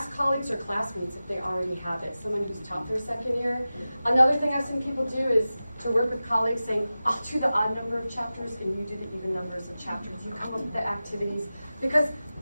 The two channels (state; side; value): inverted; both; correlation -0.95